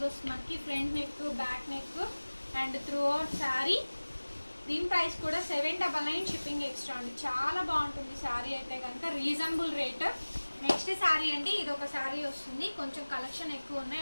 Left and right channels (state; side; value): inverted; both; correlation -1.00